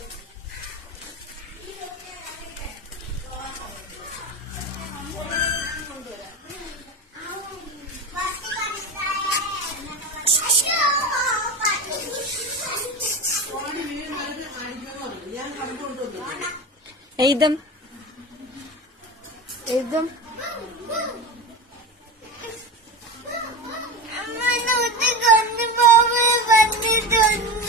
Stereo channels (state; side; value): normal; both; correlation 0.26